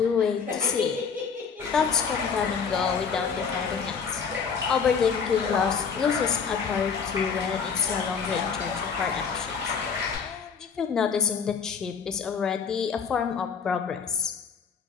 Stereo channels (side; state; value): right; quieter; 6.1 dB